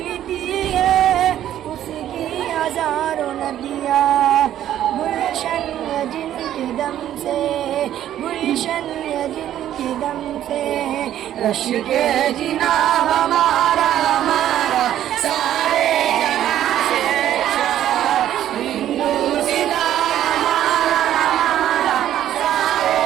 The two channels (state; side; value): quieter; left; 11.7 dB